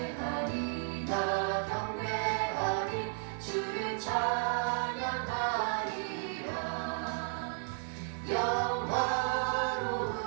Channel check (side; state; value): left; silent; 55 dB below the other